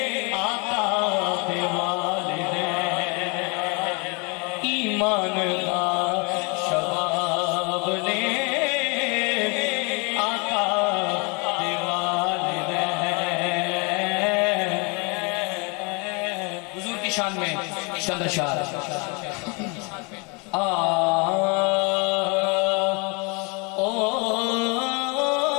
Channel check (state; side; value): quieter; right; 31.6 dB